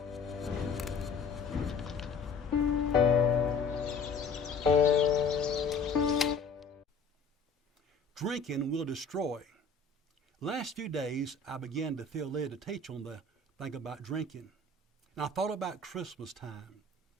Drinking will destroy. Last few days, I began to feel led to teach on the thing about drinking. And I thought about Christmas time.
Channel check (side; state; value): right; quieter; 4.3 dB